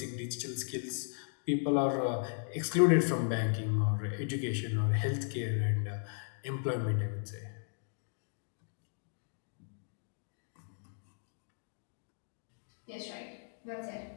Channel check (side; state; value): right; silent; digital silence